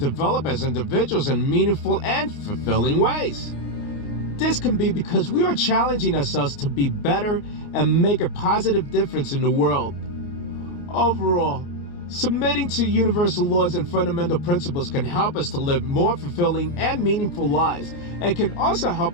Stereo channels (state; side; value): late; right; 29 ms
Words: as individuals in meaningful and fulfilling ways. This can be because we are challenging ourselves to be better and make a positive difference in the world. Overall, submitting to universal laws and fundamental principles can help us to live more fulfilling and meaningful lives, and can also